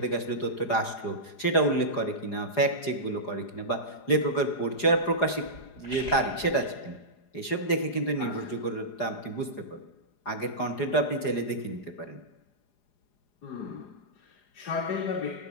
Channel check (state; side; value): late; right; 4.9 ms